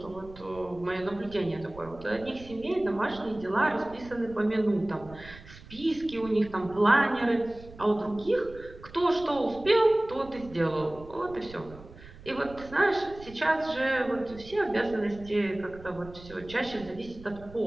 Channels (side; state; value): right; noise; rumble, 18 dB below the sound